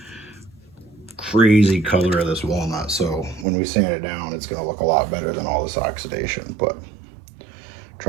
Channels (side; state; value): left; drops out; at 3.5 s